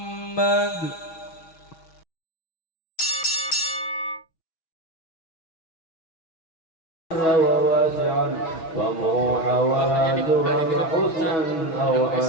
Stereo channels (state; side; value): late; right; 6.2 ms